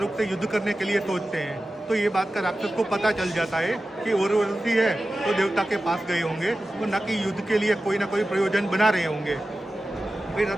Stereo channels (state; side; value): normal; both; correlation 0.94